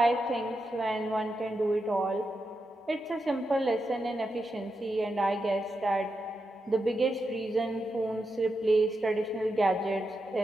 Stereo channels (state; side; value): normal; both; correlation 0.86